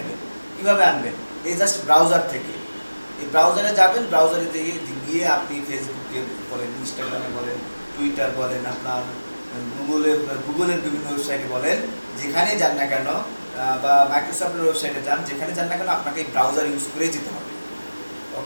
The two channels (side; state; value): both; inverted; correlation -1.00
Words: কীভাবে আনবেন, এই জাস্ট ব্রাউজার থেকে। এই ব্রাউজারে যাবেন, ব্রাউজারে গিয়ে আপনি ফেসবুকে বলেন, ইনস্টাগ্রামে বলেন, টুইটার বলেন, আপনার গুগলের বিভিন্ন ওয়েবসাইটে বলেন, যেখানে যান না কেন, বা মাইক্রোসফটের ওয়েবসাইটে যান, যেখানে যান না কেন আপনাকে এই ব্রাউজার ইউজ করেই যেতে হবে।